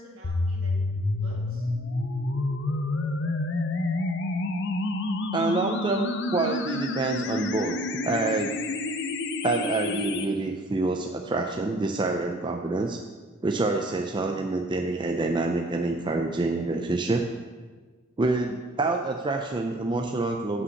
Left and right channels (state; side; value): normal; both; correlation 0.54